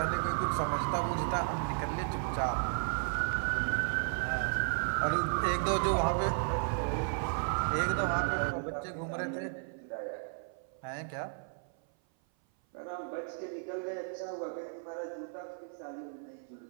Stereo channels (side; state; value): left; silent; 55 dB below the other